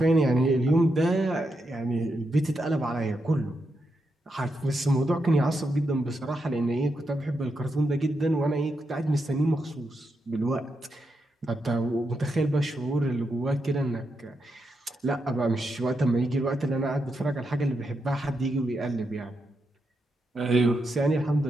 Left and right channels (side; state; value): both; normal; correlation 0.84